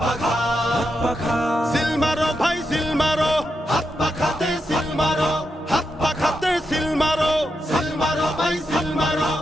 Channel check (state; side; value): normal; both; correlation 0.85